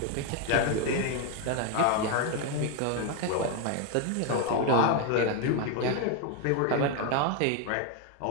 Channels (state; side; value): different; both; correlation 0.01